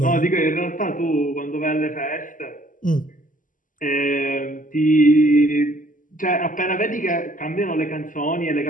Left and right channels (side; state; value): right; late; 0.38 ms